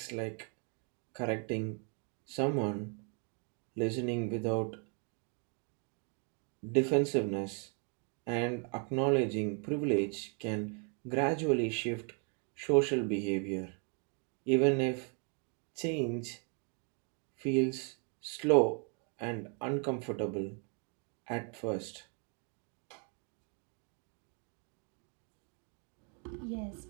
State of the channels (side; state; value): left; quieter; 38.8 dB